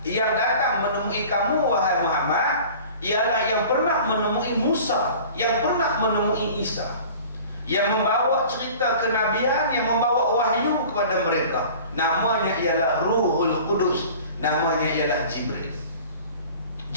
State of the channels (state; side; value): inverted; both; correlation -0.43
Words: yang datang menemui kamu wahai Muhammad ialah yang pernah menemui Musa, yang pernah menemui Isa, yang membawa cerita kenabian, yang membawa wahyu kepada mereka. Namanya ialah Ruhul Qudus, namanya ialah Jibril.